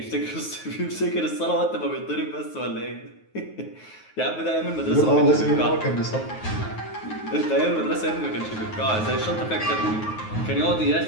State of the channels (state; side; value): late; right; 9.4 ms